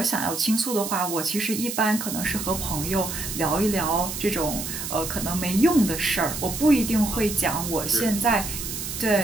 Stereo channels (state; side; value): noise; right; hiss, 6 dB below the sound